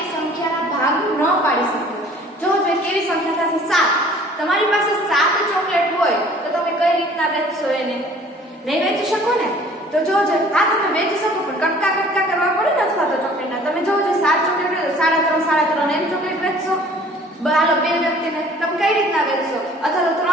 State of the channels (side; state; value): both; normal; correlation 0.52